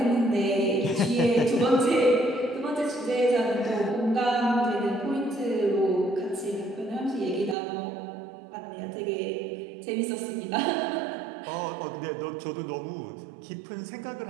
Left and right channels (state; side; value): drops out; left; at 7.6 s